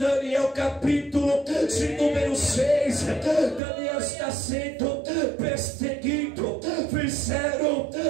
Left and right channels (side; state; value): left; drops out; at 3.6 s